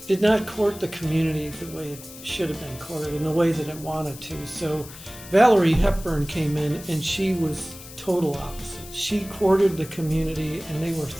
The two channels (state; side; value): noise; left; hiss, 16 dB below the sound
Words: did not court the community the way it should have been courted, in the way that it wanted to. So Valerie Hepburn came in, and she was total opposite. She courted the community, and they were